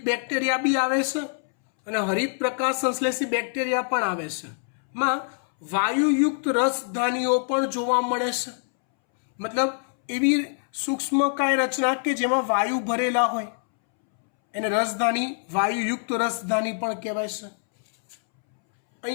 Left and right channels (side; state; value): right; silent; 62 dB below the other